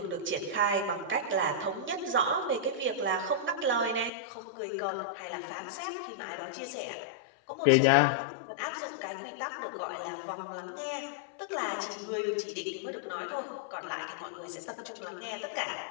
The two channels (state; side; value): drops out; right; at 4.1 s